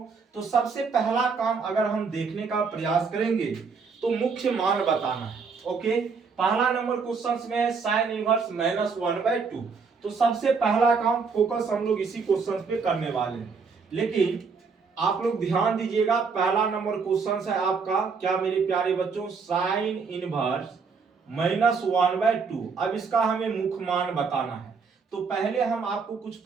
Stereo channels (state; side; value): quieter; left; 5.2 dB